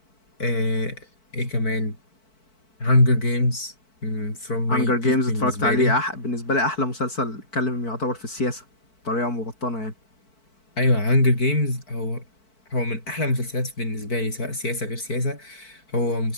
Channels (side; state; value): right; late; 4.5 ms